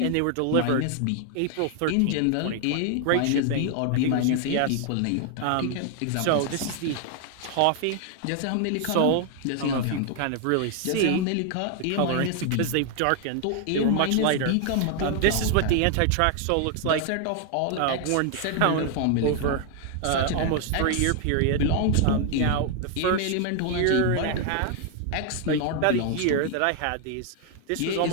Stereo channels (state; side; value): different; both; correlation 0.00